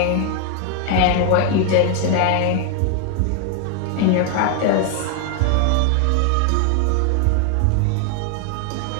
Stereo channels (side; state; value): both; different; correlation 0.00